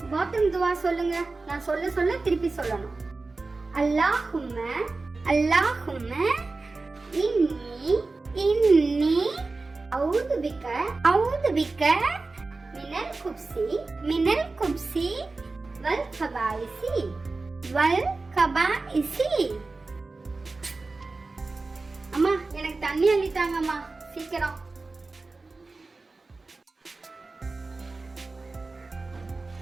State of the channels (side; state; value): left; quieter; 3.6 dB